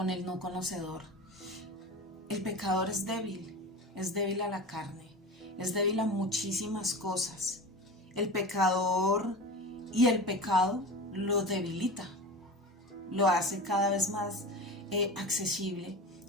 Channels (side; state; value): both; normal; correlation 0.30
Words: el no conocedor. El pecador es débil a la carne, es débil a muchísimas cosas. El pecador y el pecado lo debilita, lo hace cada vez más accesible